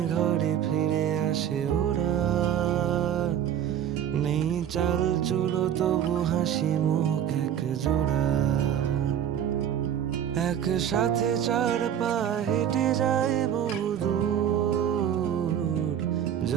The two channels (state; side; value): quieter; left; 9.6 dB